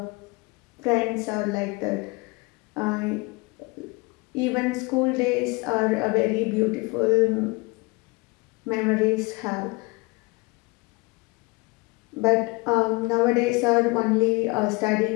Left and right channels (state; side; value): quieter; right; 26.4 dB